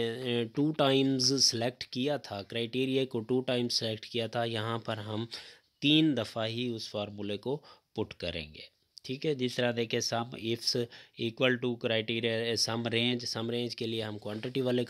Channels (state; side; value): identical; both; correlation 1.00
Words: 2 टाइम्स सेलेक्ट किया था, क्राइटेरिया को 2 टाइम्स सेलेक्ट किया था, यहाँ पर हम 3 दफ़ा ही उस फार्मूले को पुट करेंगे, ठीक है। जिस तरह देखें sum ifs equal to criteria sum range के लिए हम क्वांटिटी वाले